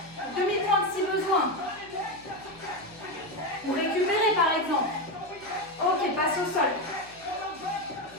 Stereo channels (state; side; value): noise; left; hum, 26 dB below the sound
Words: Demi-pointe si besoin. Ou récupérer par exemple. Ok, passe au sol.